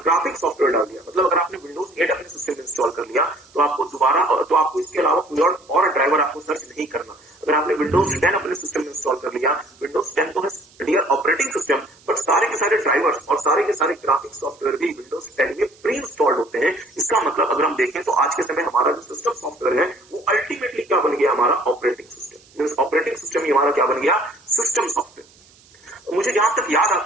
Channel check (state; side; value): noise; right; hiss, 28 dB below the sound